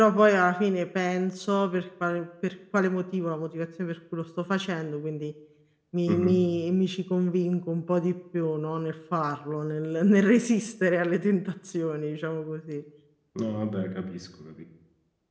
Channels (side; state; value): both; identical; correlation 1.00